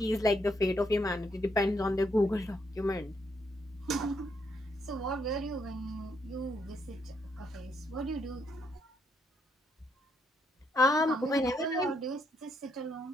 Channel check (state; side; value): normal; both; correlation 0.75